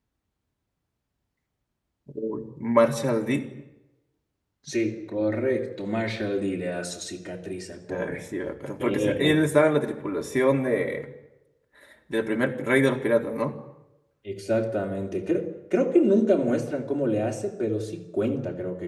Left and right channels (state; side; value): identical; both; correlation 1.00